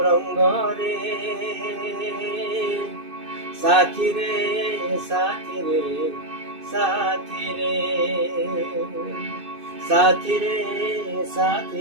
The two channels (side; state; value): left; late; 2.6 ms